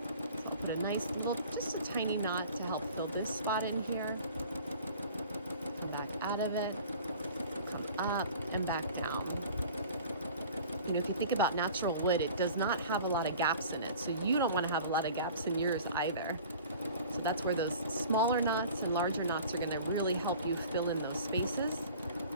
I'll put a nice little, just a tiny knot to help fill this spot in here. Come back out of it, come up and back down. You know, if you think about natural wood, it does not have a lot of gaps in it, so you don't want to have a lot of gaps in yours either. So that's where those smaller knots and larger knots are going to really help you fill in those spaces.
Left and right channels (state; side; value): inverted; both; correlation -0.44